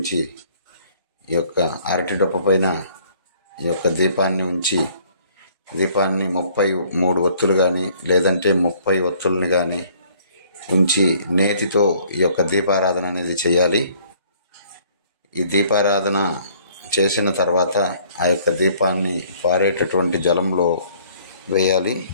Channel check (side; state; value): both; inverted; correlation -0.59